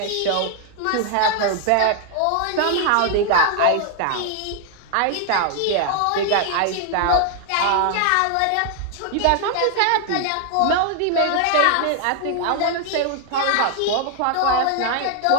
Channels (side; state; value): both; different; correlation 0.00